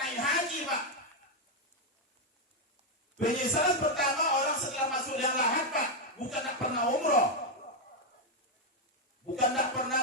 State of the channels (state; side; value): normal; both; correlation 0.02